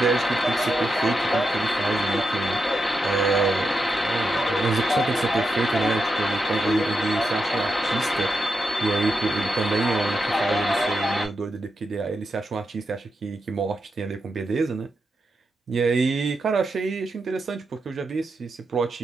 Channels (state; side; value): normal; both; correlation 0.86